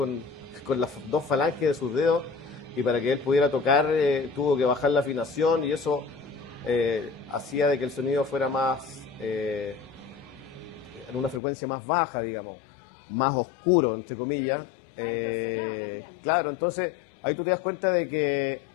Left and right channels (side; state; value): right; drops out; at 11.4 s